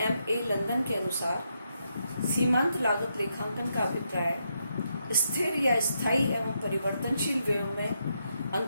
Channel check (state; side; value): inverted; both; correlation -0.81